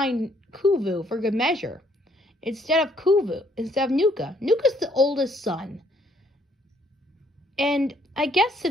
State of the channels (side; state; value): both; normal; correlation 0.66